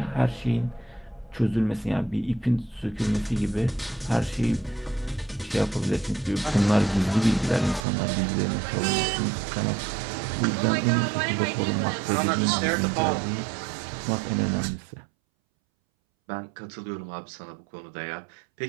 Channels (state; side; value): drops out; left; at 7.8 s